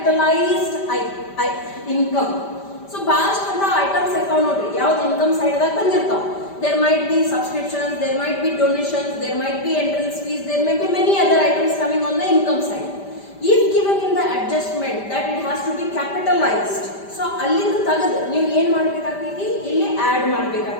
income. So bast ಅಂತ items account ನೋಡ್ರಿ ಯಾವ್ದು income side ದಾಗ ಬಂದಿರ್ತಾವ. There might be subscriptions, there might be donations, there might be entrance fees, there may be many other items coming on the income side. If given in the adjustment that it has to be capitalized, so ಅಲ್ಲಿಂದ ತೆಗೆದು ನೀವು ಏನು ಮಾಡಬೇಕಾಗ್ತೈತಿ, ಇಲ್ಲಿ add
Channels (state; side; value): late; right; 5.1 ms